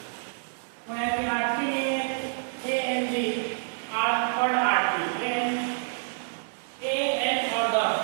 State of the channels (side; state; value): left; silent; 59 dB below the other